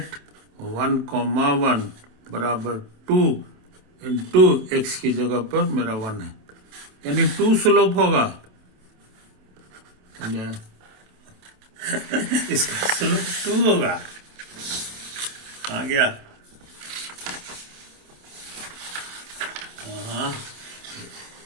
1,1 बराबर 2 इंटू एक्स की जगह पर मेरा 1 है, यानी 2 स्लोप होगा। समझे, इसका स्लोप 2 होगा, आ गया। हाँ,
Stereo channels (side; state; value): left; late; 27 ms